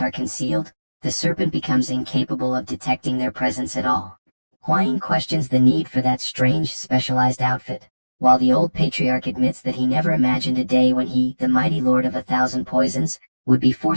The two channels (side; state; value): both; inverted; correlation -1.00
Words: are concealed, the serpent becomes incapable of detecting their presence at all. Huayin questions the need for that strange, specialized outfit, while the old patriarch admits that he never imagined a day when he, the mighty lord of 1,000 poisons, would be